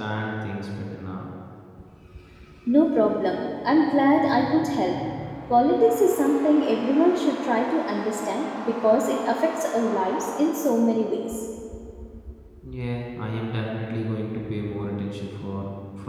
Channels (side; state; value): both; identical; correlation 1.00